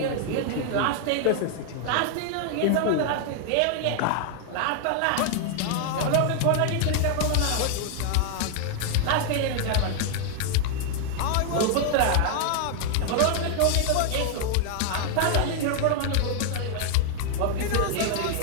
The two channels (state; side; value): different; both; correlation 0.00